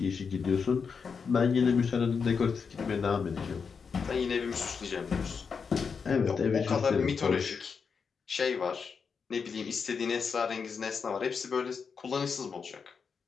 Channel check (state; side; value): quieter; right; 5.8 dB